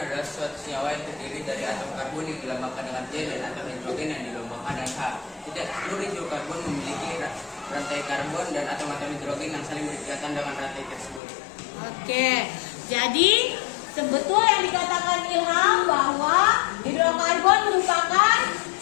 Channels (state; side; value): drops out; right; at 11.2 s